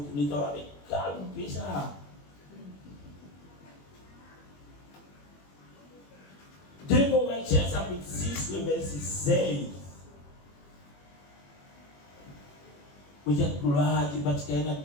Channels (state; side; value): late; right; 21 ms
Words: êtes avec calme, ça. 2 Corinthiens chapitre 6, le verset 16. Vous êtes gloire parce qu'il y a